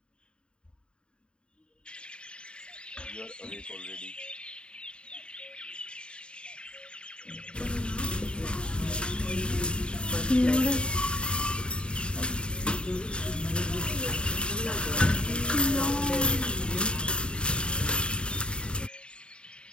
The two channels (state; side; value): late; right; 0.053 ms